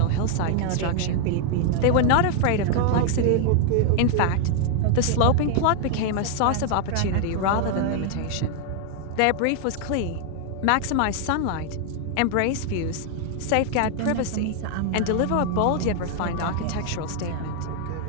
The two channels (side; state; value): both; different; correlation 0.00